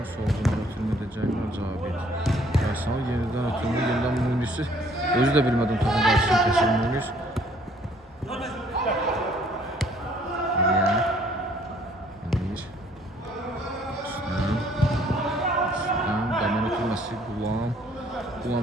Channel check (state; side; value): normal; both; correlation 0.61